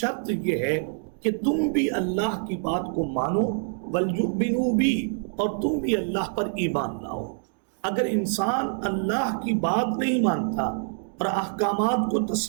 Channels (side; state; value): left; silent; digital silence